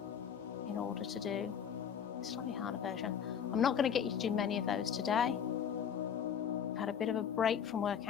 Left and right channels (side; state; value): right; quieter; 8.0 dB